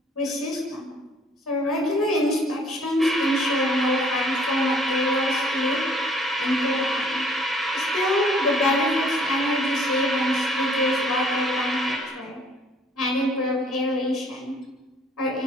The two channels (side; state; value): both; normal; correlation 0.58